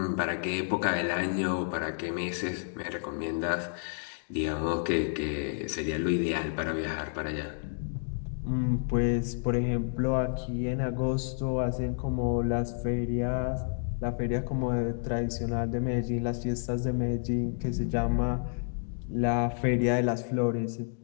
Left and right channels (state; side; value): silent; right; digital silence